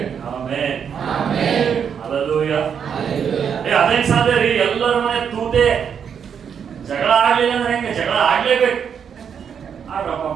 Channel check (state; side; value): quieter; left; 7.5 dB